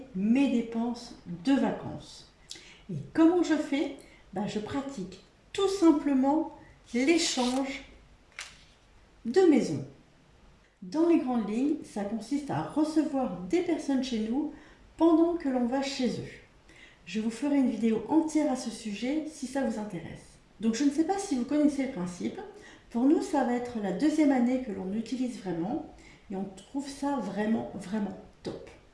mes dépenses de vacances. Et comment je fais? Je pratique tout simplement l'échange de maisons. Dans les grandes lignes, ça consiste à recevoir des personnes chez nous pendant que l'on va chez eux. Je vous ferai une vidéo entière à ce sujet si ça vous intéresse. Donc je ne sais pas si vous connaissez le principe. Pour nous, ça va être la deuxième année que l'on utilise vraiment et on trouve ça vraiment top.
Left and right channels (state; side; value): identical; both; correlation 1.00